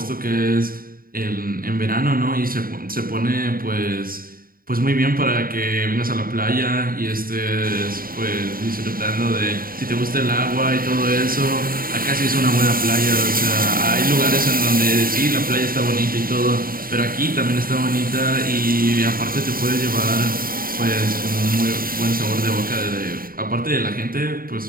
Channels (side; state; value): left; late; 0.42 ms